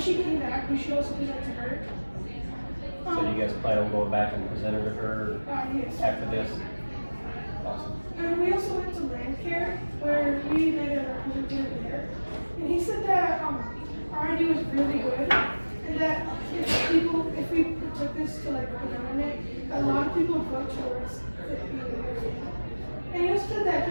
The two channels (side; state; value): both; inverted; correlation -1.00